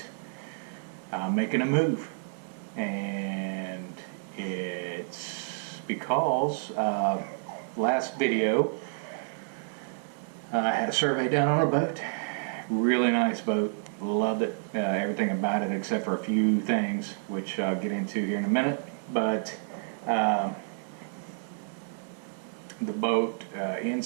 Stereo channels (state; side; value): silent; left; digital silence